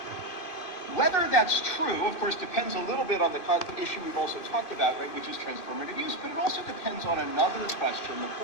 Whether that's true, of course, depends a little bit on the issue we've also talked about, right, which is transformative use, but it also depends on another question, the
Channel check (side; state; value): right; late; 2.6 ms